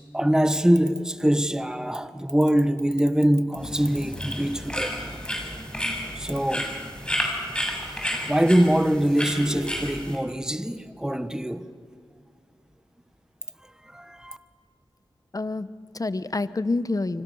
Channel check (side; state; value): both; normal; correlation 0.92